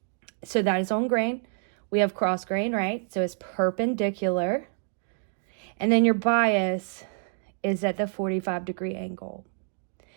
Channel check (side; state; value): left; silent; digital silence